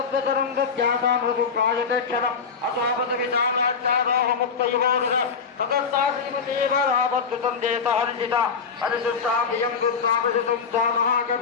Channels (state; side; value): quieter; right; 5.7 dB